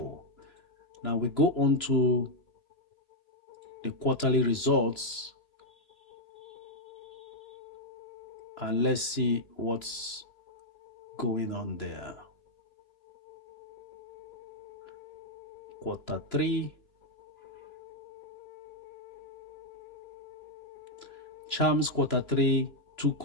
Now we go on to the quarterly results and let's see what's going on there. Quarter 3, Charms quarter 3, 2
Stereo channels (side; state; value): right; late; 3.0 ms